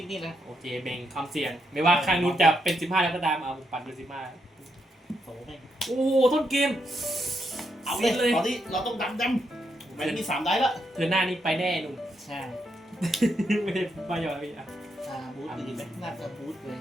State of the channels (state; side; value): normal; both; correlation 0.80